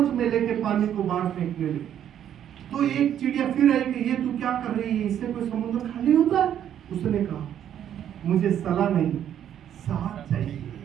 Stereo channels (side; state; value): left; quieter; 10.1 dB